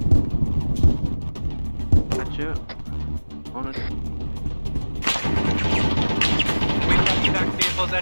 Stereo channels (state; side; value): inverted; both; correlation -1.00